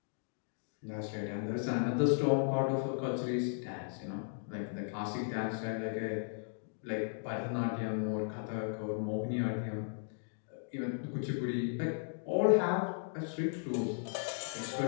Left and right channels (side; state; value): right; silent; digital silence